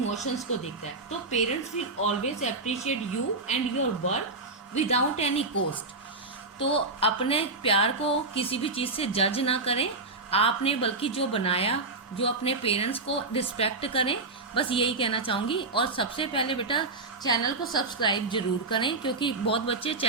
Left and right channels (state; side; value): quieter; left; 3.5 dB